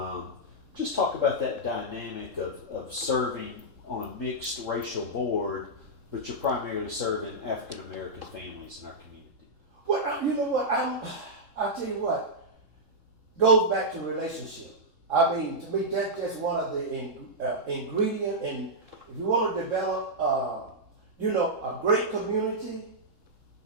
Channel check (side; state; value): left; late; 3.7 ms